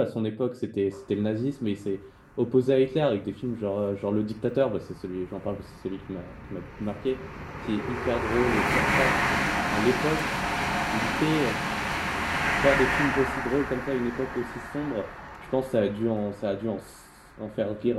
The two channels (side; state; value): both; identical; correlation 1.00